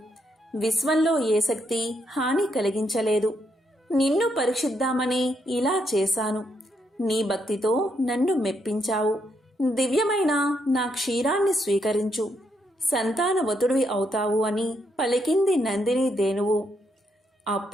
విశ్వంలో ఏ శక్తి హాని కలిగించలేదు. నిన్ను పరీక్షిద్దామని ఇలా చేశాను. నీ భక్తితో నన్ను మెప్పించావు. దివ్యమైన నా క్షీరాన్ని స్వీకరించు, సంతానవతుడివి అవుతావు అని పలికింది నందిని ధేనువు.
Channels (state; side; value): normal; both; correlation 0.77